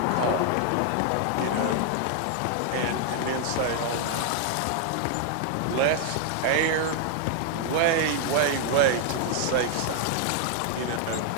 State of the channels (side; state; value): both; different; correlation 0.00